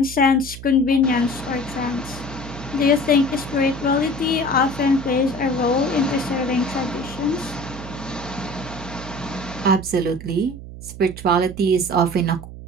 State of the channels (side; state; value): right; noise; hum, 13 dB below the sound